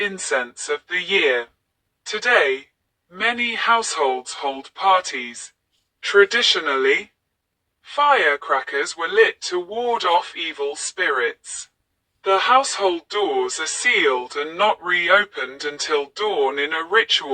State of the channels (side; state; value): both; identical; correlation 1.00